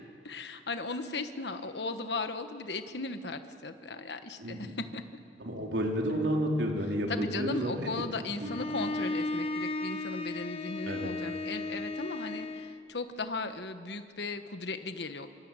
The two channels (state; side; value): normal; both; correlation 0.40